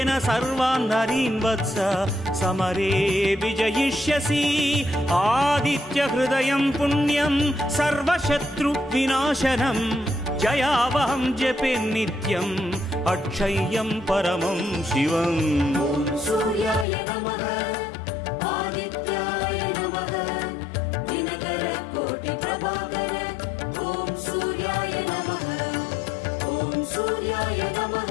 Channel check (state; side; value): drops out; right; at 16.9 s